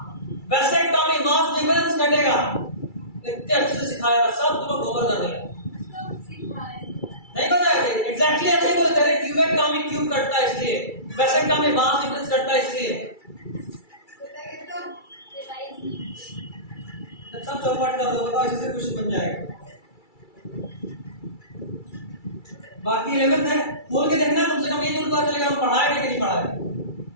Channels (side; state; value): right; late; 2.3 ms